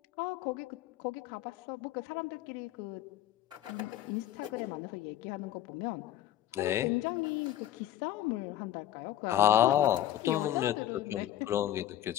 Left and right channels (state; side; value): quieter; right; 12.5 dB